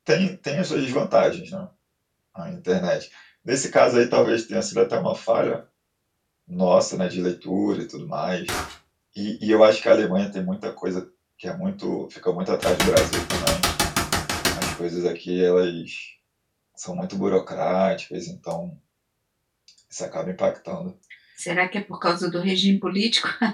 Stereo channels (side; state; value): both; identical; correlation 1.00